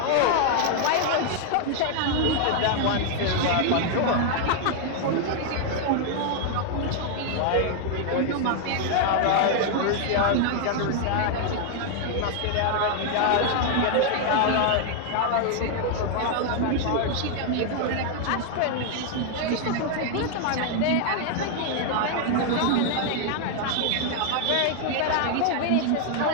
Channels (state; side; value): different; both; correlation 0.00